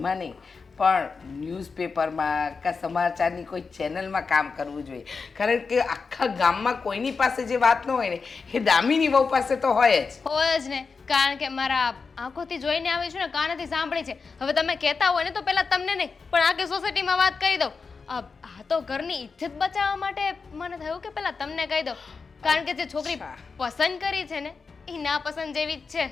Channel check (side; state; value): right; quieter; 4.9 dB